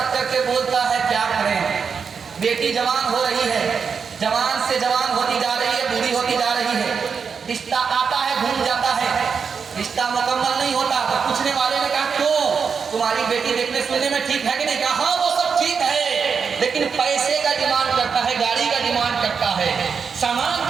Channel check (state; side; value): quieter; left; 6.0 dB